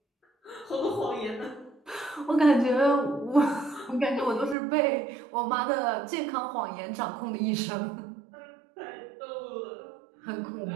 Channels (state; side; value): drops out; left; at 4.5 s